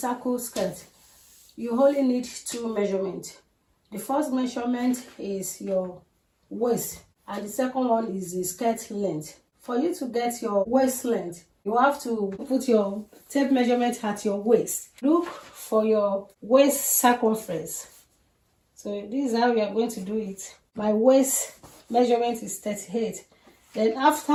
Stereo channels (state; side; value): identical; both; correlation 1.00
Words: skirt, you only need two measurements. The first measurement is your waist and the second one is the skirt length. For you to get your waist length, you have to put your tape measurement at your waist. Look for your waist circumference. So this is how we are going to do it. My waist measurement is 38. Then